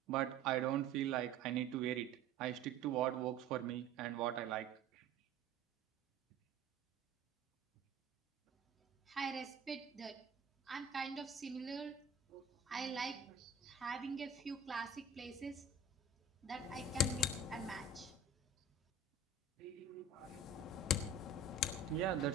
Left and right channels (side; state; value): left; quieter; 3.4 dB